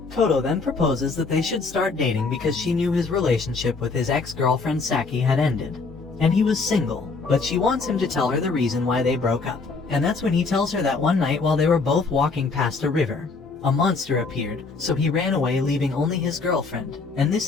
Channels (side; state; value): right; quieter; 4.3 dB